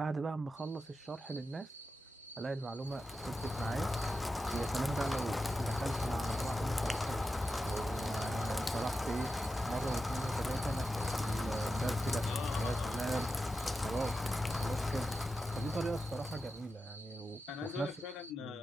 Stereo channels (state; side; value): normal; both; correlation 0.90